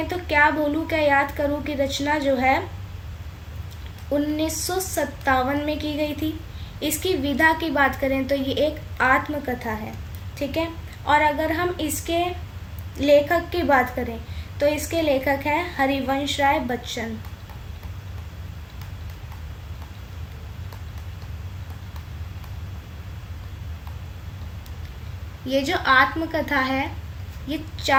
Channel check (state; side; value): identical; both; correlation 1.00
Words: तो क्या भूलूं क्या याद करूं की रचना जो है 1957 में की गई थी। इसकी विधा की बात करें तो ये एक आत्मकथा है। ठीक है। और अगर हम इसके लेखक की बात करें तो इसके लेखक हैं हरिवंश राय बच्चन। ये जो आत्मकथा है ये